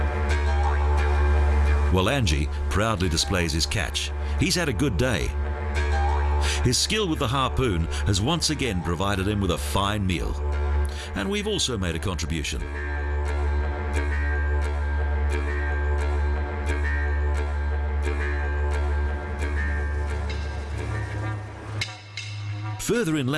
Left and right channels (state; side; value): identical; both; correlation 1.00